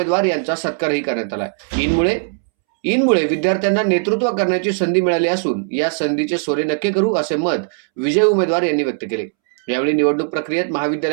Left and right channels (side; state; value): left; silent; 67 dB below the other